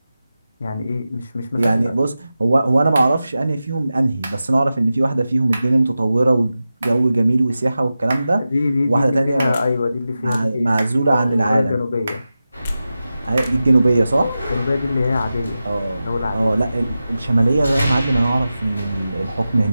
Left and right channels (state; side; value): inverted; both; correlation -0.93